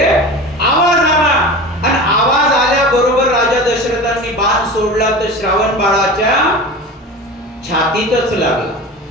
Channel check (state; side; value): normal; both; correlation 0.32